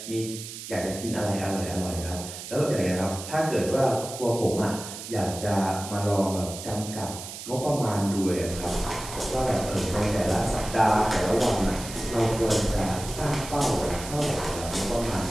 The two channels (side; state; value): right; noise; hiss, 10 dB below the sound